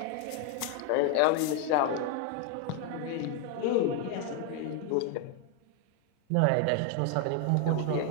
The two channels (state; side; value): different; both; correlation 0.01